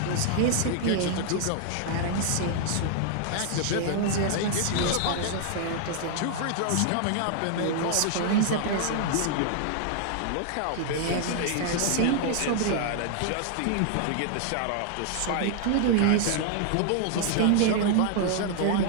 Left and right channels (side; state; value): both; different; correlation 0.00